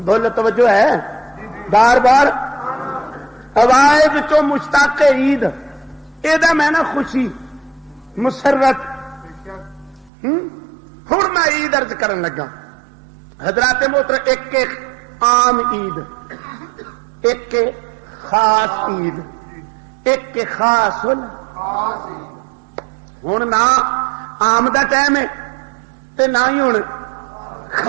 بولو توجہ ہے بار بار آواز چو مشتاق عید یہ میں نا خوشی مسرت ہوں میں عید ارج کرن لگا حضرات محترم، ایک عام عید، ایک خاص عید، ایک خاص ہوں نہ عام دا ٹائم ہے تے نہ ہی ہوں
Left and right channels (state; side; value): drops out; left; at 10.1 s